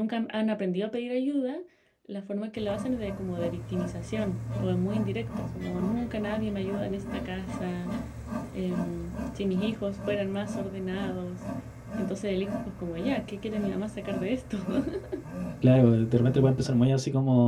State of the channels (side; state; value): both; identical; correlation 1.00